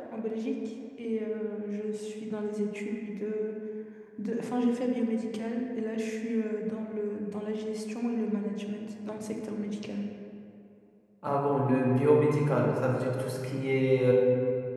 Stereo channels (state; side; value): identical; both; correlation 1.00